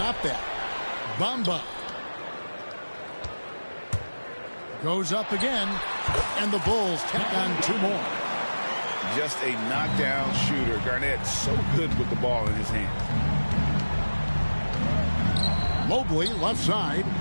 that? Bamba. Goes up again. And the Bulls tack on 2 more. Just a knockdown shooter. Garnett so good with the ball in his hand. Mobley, left side.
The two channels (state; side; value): inverted; both; correlation -1.00